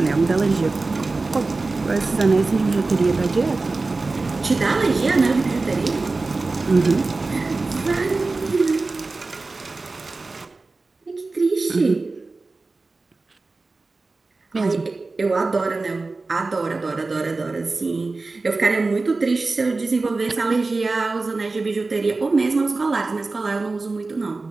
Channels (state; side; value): quieter; left; 3.6 dB